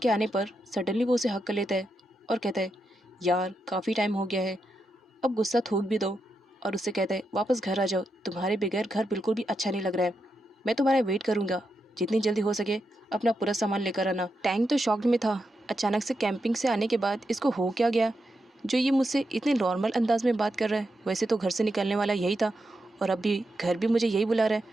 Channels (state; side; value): normal; both; correlation 0.85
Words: के आने पर सडनली वो उसे हक कर लेता है और कहता है, यार काफ़ी टाइम हो गया है, अब गुस्सा थूक भी दो। और उससे कहता है, वापस घर आ जाओ, तुम्हारे बगैर घर बिल्कुल भी अच्छा नहीं लग रहा है, मैं तुम्हारा वेट करूँगा, जितनी जल्दी हो सके अपना पूरा सामान लेकर आना। टैंक तो शॉक्ड में था। अचानक से कैंपिंग से आने के बाद इसको हो क्या गया जो ये मुझसे इतने नॉर्मल अंदाज में बात कर रहा है। वैसे तो घर से निकलने वाला यही था और अब भी घर भी मुझे यही बुला रहा है।